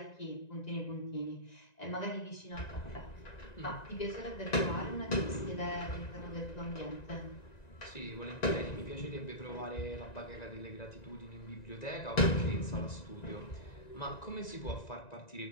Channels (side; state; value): right; late; 1.9 ms